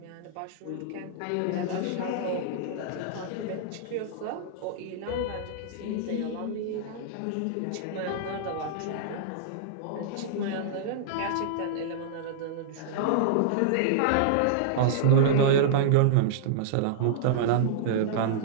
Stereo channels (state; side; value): different; both; correlation -0.02